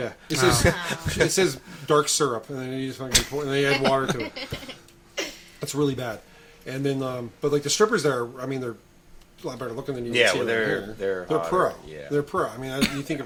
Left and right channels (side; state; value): both; identical; correlation 1.00